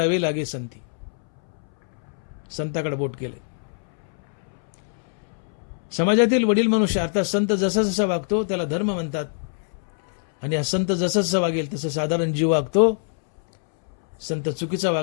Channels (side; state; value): right; silent; 63 dB below the other